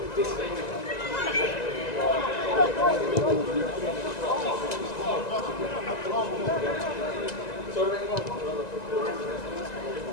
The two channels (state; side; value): late; right; 1.9 ms